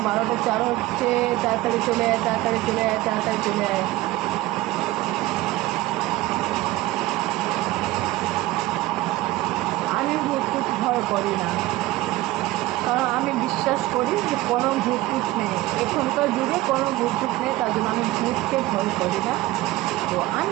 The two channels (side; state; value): left; quieter; 17.3 dB